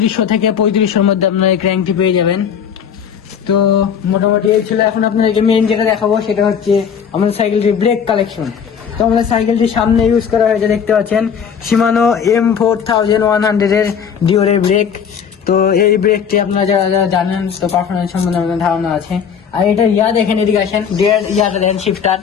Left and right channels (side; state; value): right; quieter; 7.4 dB